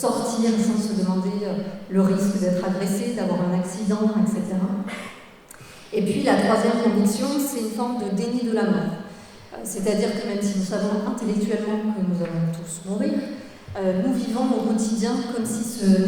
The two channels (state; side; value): identical; both; correlation 1.00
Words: sans se demander le risque d'être agressé, d'avoir un accident, etc. Et puis la troisième conviction, c'est une forme de déni de la mort. C'est-à-dire que même si nous savons intellectuellement que nous allons tous mourir, nous vivons au quotidien comme si ce